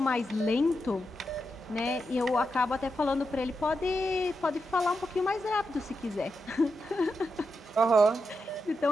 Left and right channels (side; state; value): both; normal; correlation 0.86